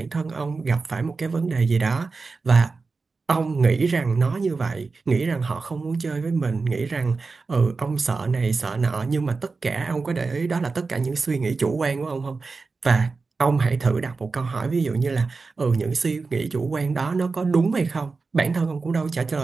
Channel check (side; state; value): left; quieter; 4.2 dB